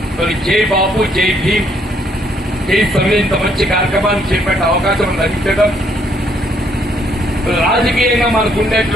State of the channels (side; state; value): both; normal; correlation 0.69